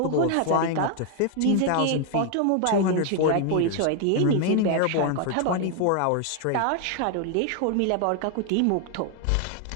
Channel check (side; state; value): both; different; correlation 0.00